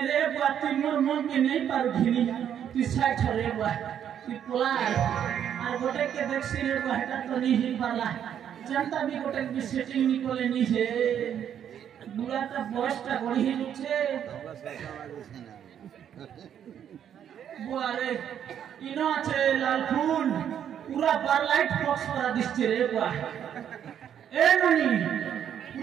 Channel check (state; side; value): quieter; left; 9.3 dB